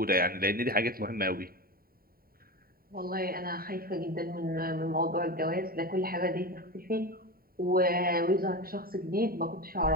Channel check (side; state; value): left; late; 0.43 ms